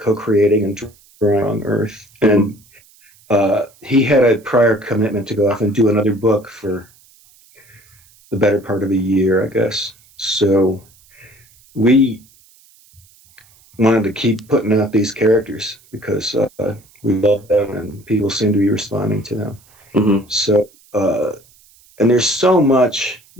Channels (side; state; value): right; noise; hiss, 29 dB below the sound